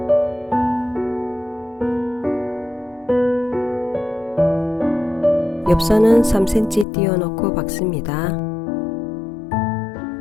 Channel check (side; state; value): right; drops out; at 6.9 s